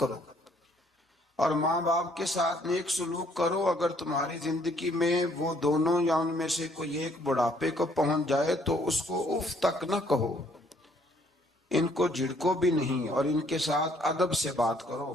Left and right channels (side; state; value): both; normal; correlation 0.64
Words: اور ماں باپ کے ساتھ نیک سلوک کرو. اگر تمہاری زندگی میں وہ دونوں یا ان میں سے کوئی ایک بڑھاپے کو پہنچ جائے تو اس کو اف تک نہ کہو، ان کو جھڑکو بھی نہیں اور ان کے ساتھ ادب سے بات کرو